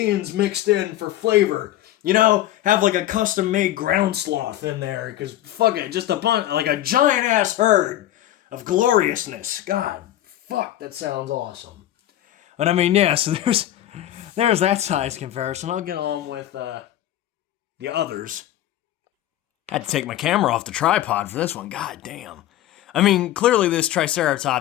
mixed in for flavor. You know, have like a custom-made ground sloth in there, because fuck it, just a bunch, like a giant-ass herd of gloriousness. God, fuck, that sounds awesome. But I mean, yeah, so there's that size comparison. I'll get on with the others. I had to take my camera off the tripod for this one. God damn. I mean, clearly this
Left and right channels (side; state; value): right; quieter; 13.4 dB